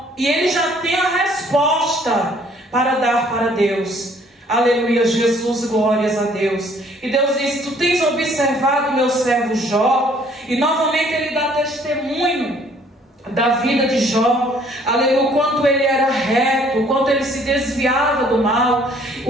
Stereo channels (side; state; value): both; normal; correlation 0.60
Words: e ele já tem a resposta para dar para Deus, aleluia, Jesus, glórias a Deus. E Deus diz: tu tens observado meu servo Jó. E novamente ele dá testemunho da vida de Jó, aleluia, o quanto ele era reto, o quanto ele se desviava do mal,